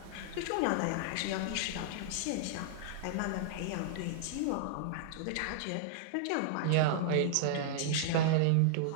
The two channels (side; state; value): both; different; correlation -0.01